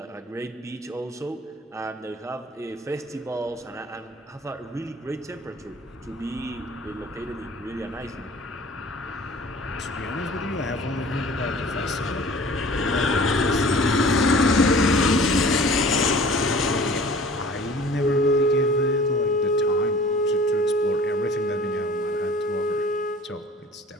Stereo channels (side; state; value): both; normal; correlation 0.47